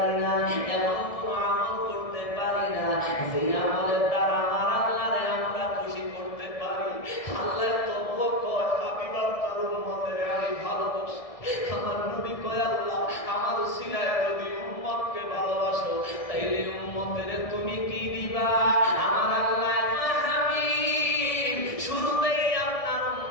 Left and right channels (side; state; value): right; late; 1.7 ms